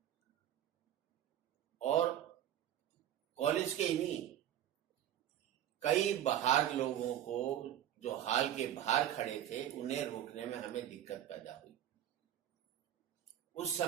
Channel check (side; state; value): left; quieter; 11.3 dB